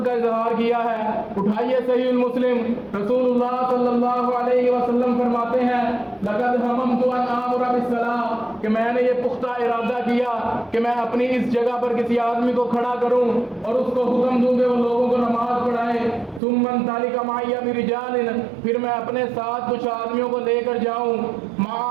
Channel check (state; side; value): drops out; left; at 16.4 s